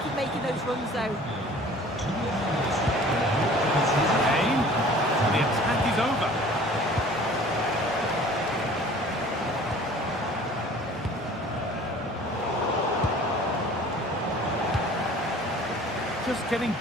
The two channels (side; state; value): both; normal; correlation 0.48